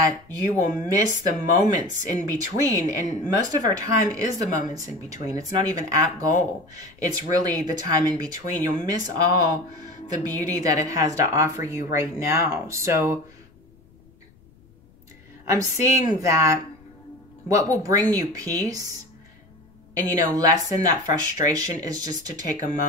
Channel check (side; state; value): left; noise; rumble, 28 dB below the sound